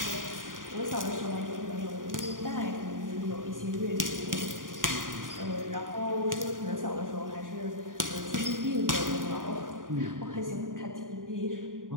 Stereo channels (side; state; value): left; late; 0.89 ms